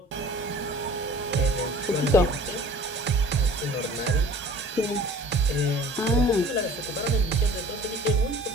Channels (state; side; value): normal; both; correlation 0.47